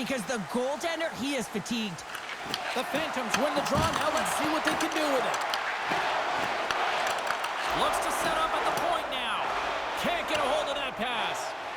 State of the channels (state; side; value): identical; both; correlation 1.00